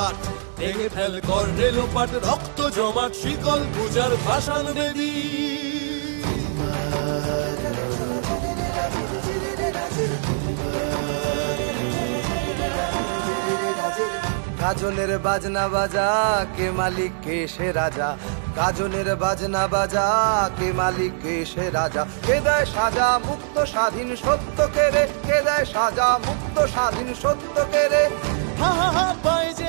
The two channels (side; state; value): left; silent; digital silence